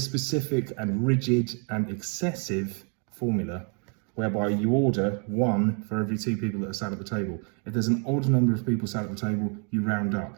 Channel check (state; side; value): quieter; left; 38.7 dB